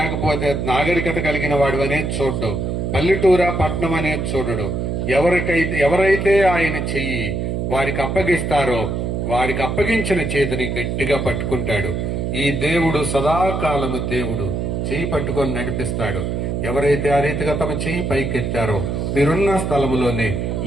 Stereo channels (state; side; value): noise; right; hum, 1 dB below the sound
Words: నాగరికత కలిగిన వాడివనేది చూడడు. పల్లెటూరా పట్నం అనేది చూడడు. ఎవరైతే ఆయన చెయ్యి వారికి అప్పగిస్తారో వారికి అప్పగించిన చేతిని గట్టిగా పట్టుకుంటాడు. ఈ దేవుడు సదాకాలము దేవుడు చెయ్యి పట్టుకొని నడిపిస్తాడు. ఎవరైతే ఆ రీతిగా తమ చెయ్యి పైకెత్తారో మీరున్న స్థలములోనే